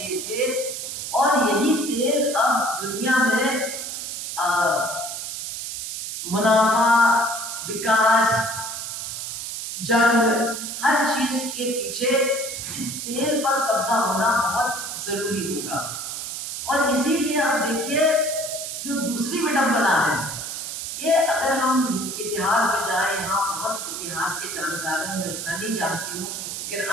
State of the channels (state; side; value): noise; right; hiss, 6 dB below the sound